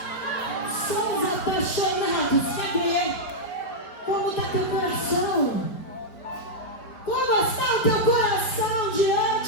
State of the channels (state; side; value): late; right; 4.8 ms